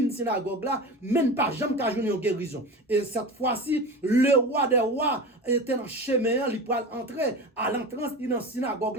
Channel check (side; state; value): both; normal; correlation 0.29